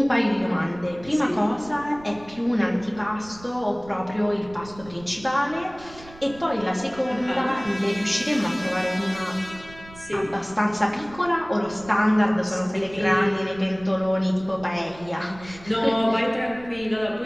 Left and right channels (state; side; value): noise; right; rumble, 20 dB below the sound